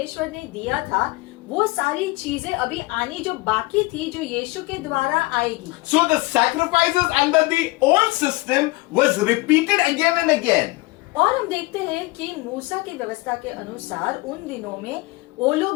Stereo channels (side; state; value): right; quieter; 22.1 dB